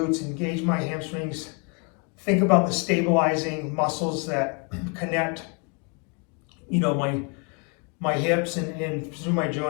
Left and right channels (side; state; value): right; quieter; 33.8 dB